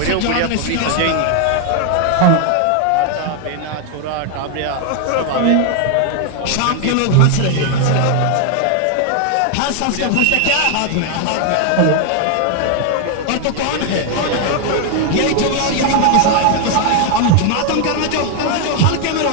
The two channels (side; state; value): both; different; correlation 0.00